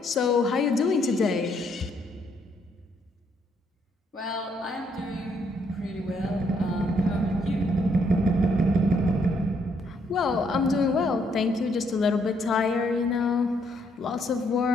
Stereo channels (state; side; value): normal; both; correlation 0.71